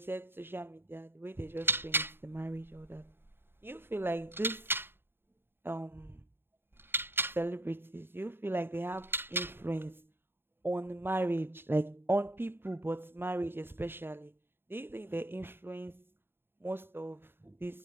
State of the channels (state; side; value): late; left; 0.11 ms